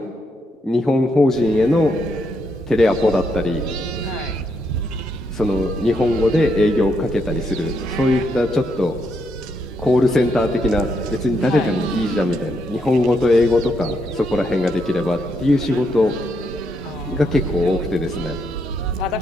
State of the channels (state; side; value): normal; both; correlation 0.77